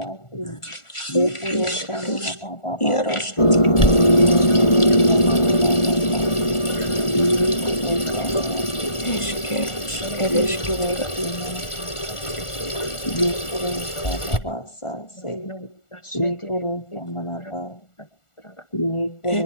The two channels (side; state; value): right; late; 1.4 ms